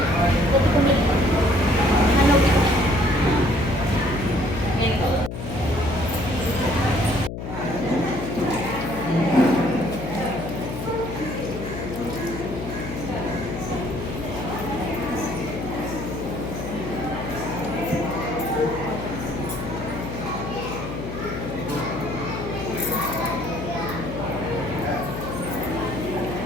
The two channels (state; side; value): noise; left; hum, 6 dB below the sound